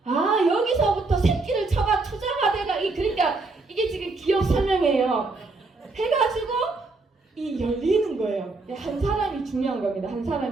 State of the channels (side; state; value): left; quieter; 3.5 dB